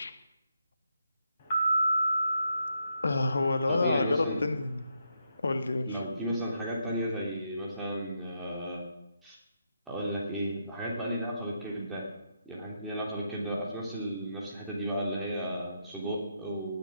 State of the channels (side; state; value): both; inverted; correlation -0.80